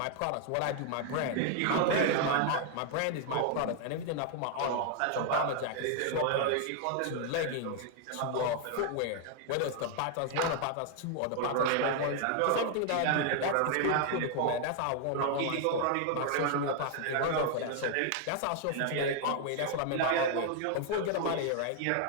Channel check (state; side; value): different; both; correlation 0.00